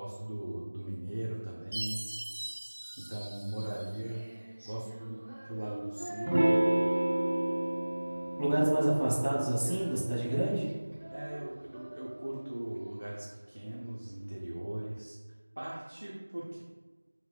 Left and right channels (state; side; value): inverted; both; correlation -1.00